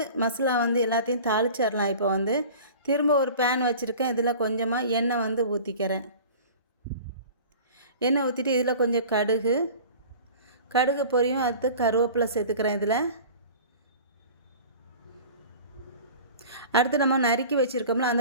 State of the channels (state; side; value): inverted; both; correlation -0.41